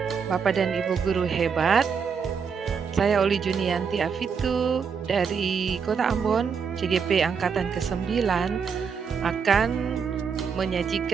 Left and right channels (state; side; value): quieter; left; 6.2 dB